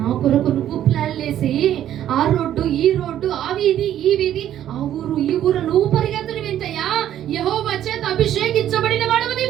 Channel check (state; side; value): quieter; left; 11.4 dB